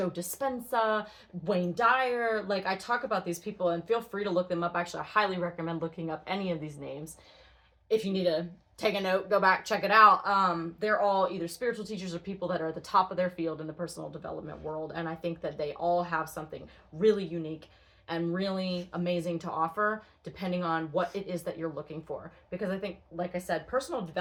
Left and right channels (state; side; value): identical; both; correlation 1.00